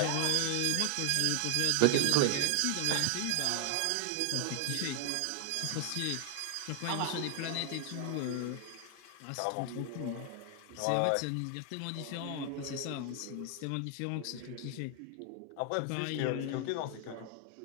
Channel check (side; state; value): both; different; correlation 0.00